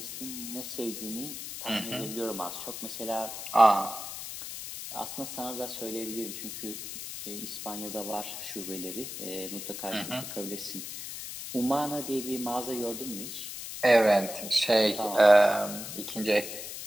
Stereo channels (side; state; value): left; noise; hiss, 8 dB below the sound